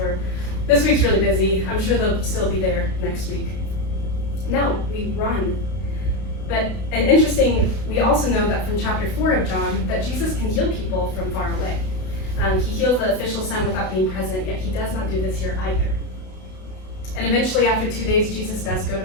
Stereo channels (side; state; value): right; late; 32 ms